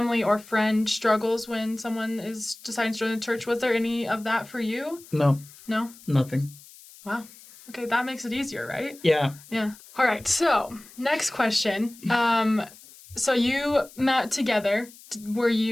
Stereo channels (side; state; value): left; noise; hiss, 21 dB below the sound